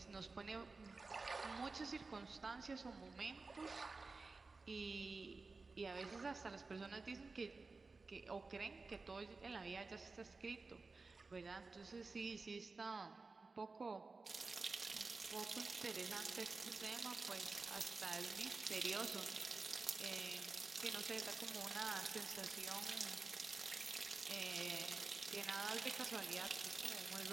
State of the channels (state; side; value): quieter; left; 3.9 dB